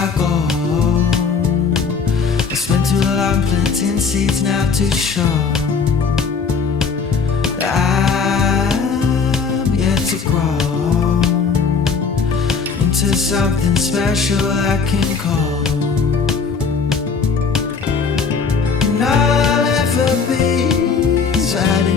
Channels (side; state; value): right; quieter; 5.4 dB